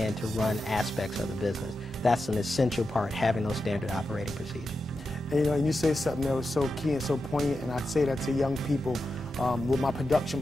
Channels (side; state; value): both; normal; correlation 0.89